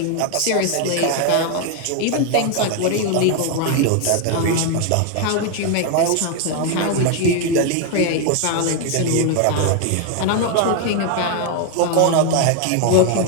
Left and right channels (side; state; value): both; different; correlation 0.01